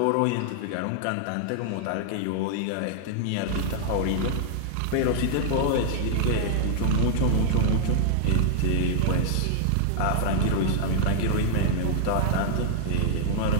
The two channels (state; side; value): different; both; correlation -0.01